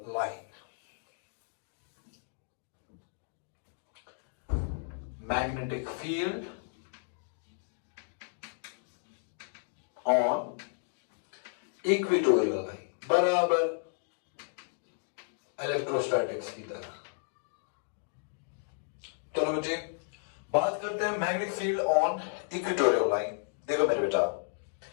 line. Magnetic field on equatorial line बराबर electrostatics की तरह। चलो बच्चे बात करते हैं magnetic field on equatorial line. देखो मेरे बेटा,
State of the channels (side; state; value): right; silent; digital silence